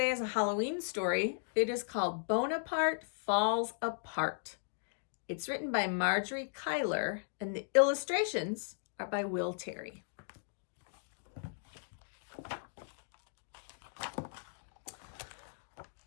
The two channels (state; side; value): silent; right; digital silence